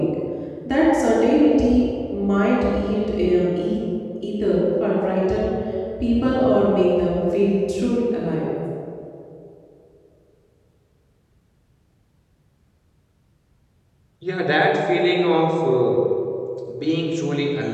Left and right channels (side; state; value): both; identical; correlation 1.00